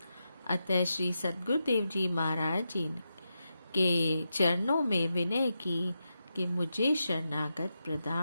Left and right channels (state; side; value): inverted; both; correlation -0.87